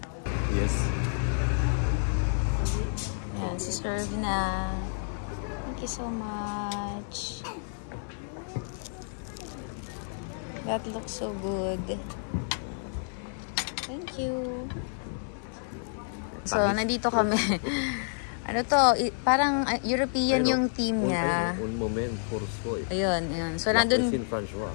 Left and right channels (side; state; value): right; silent; 58 dB below the other